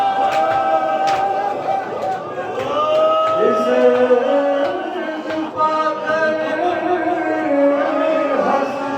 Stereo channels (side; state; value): both; identical; correlation 1.00